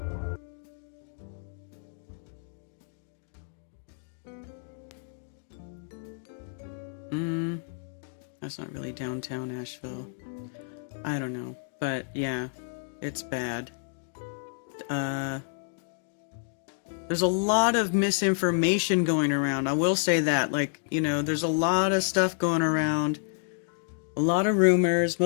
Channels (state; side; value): silent; right; digital silence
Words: That's not really downtown Asheville. I don't know. But yeah, it's bad. There's a lot of misinformation going around. I will say that. Like, you know, there's a lot of stuff going around. A lot of rumors.